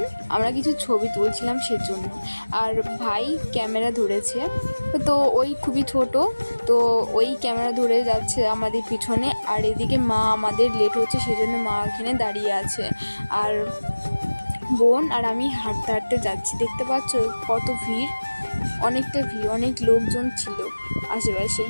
আমরা কিছু ছবি তুলছিলাম সেজন্য। আর ভাই ক্যামেরা ধরেছে, তো ওই খুবই ছোট, তো ওই ক্যামেরা ধরে যাচ্ছে আমাদের পিছনে। আর এদিকে মা, আমাদের লেট হচ্ছে সেজন্য মা এখানে দাঁড়িয়ে আছে। আর বোন আর আমি হাঁটতে হাঁটতে যাচ্ছি, দেখতে পাচ্ছ কত ভিড়, অনেকটা ভিড়, অনেক লোকজন ছিল আশেপাশে,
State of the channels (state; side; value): inverted; both; correlation -1.00